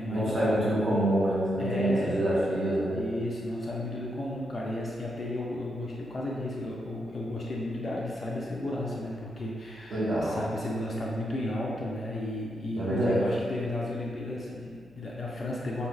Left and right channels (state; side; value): noise; left; hum, 28 dB below the sound